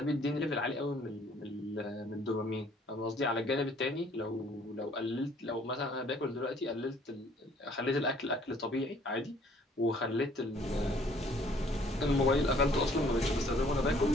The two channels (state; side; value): normal; both; correlation 0.59